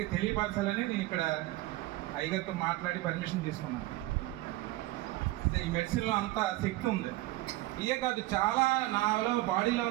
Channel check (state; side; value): quieter; left; 17.9 dB